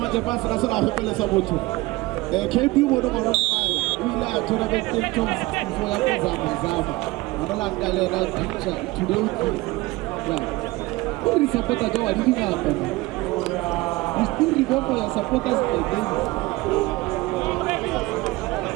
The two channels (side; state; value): left; quieter; 20.7 dB